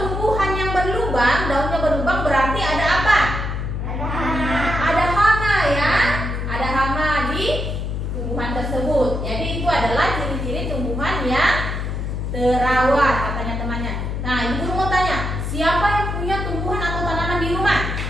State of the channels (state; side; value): noise; left; hum, 3 dB below the sound